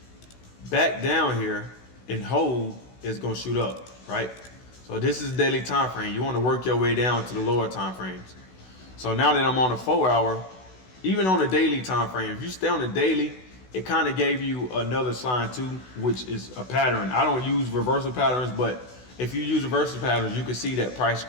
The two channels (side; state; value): right; late; 16 ms